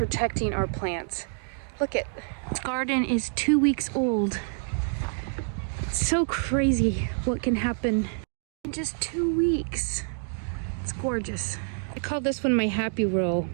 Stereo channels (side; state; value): left; silent; digital silence